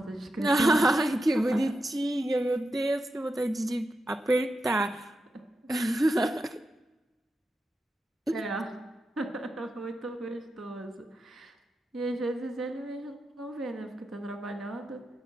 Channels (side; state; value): both; normal; correlation 0.88